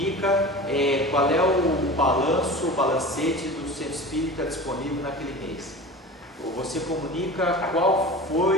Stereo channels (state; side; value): normal; both; correlation 0.34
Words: qual é o balancete do centro espírita disponível naquele mês. Ou você comunica qual